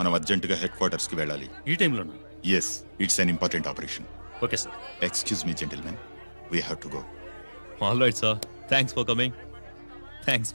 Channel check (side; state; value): both; inverted; correlation -1.00